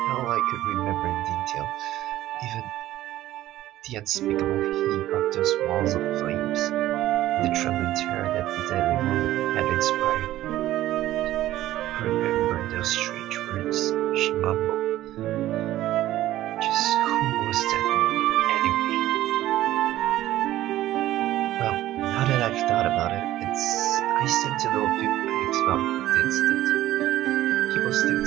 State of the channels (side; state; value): left; quieter; 14.4 dB